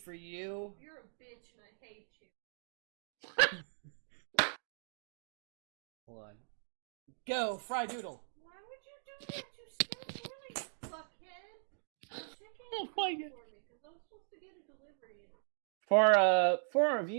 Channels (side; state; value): left; silent; digital silence